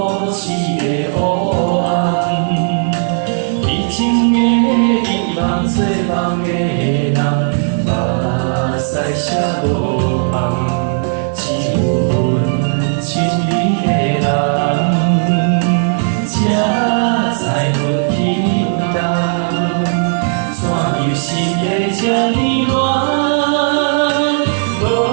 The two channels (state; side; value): silent; left; 60 dB below the other